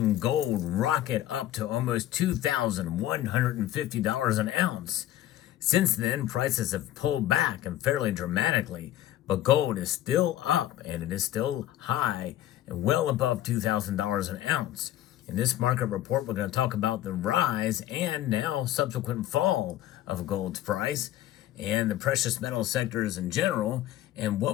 gold rocket up to almost $2,150 an ounce. Since then, prices have pulled back and fairly dramatically, but gold is still up and it is still high and well above $2,000 an ounce. In this market report, we're going to talk about the rise and now subsequent fall of gold's price and the precious metal sectors in general, and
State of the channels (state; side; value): quieter; right; 13.3 dB